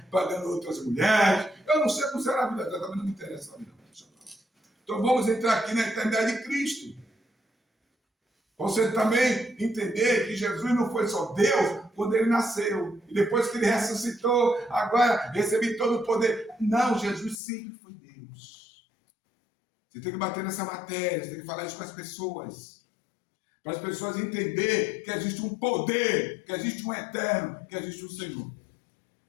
pagando outras mulheres. Eu não sei como será a vida dela, também não me interessa a vida dela. Então vamos entrar aqui na eternidade de Cristo. Você também entender que Jesus não foi só Deus quando ele nasceu. E depois que ele ressuscitou, agora recebi todo o poder. Não, Jesus sempre foi Deus. Você tem que bater nessa matéria, você tem que falar isso com as pessoas. Para as pessoas entenderem que existe um poder, que existe um eterno, que existe um Senhor.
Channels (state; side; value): drops out; right; at 17.4 s